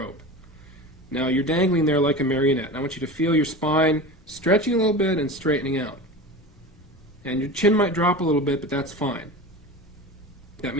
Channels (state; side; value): normal; both; correlation 0.31